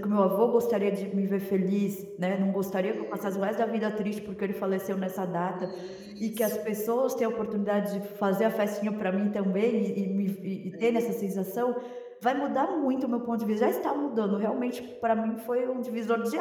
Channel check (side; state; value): both; identical; correlation 1.00